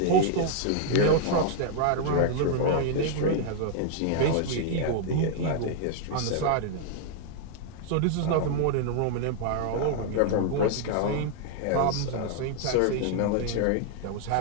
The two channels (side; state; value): both; different; correlation -0.01